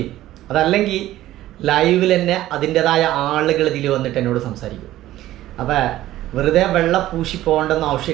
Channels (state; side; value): quieter; left; 14.6 dB